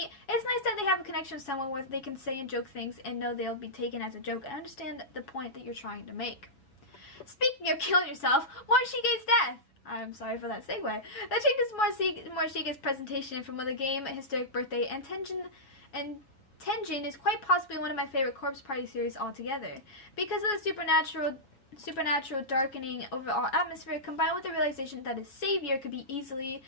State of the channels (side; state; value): right; late; 7.1 ms